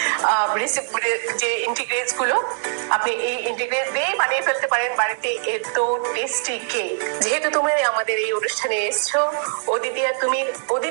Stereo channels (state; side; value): silent; left; digital silence